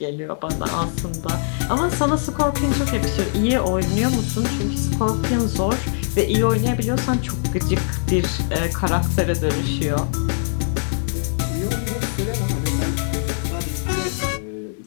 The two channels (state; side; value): silent; right; digital silence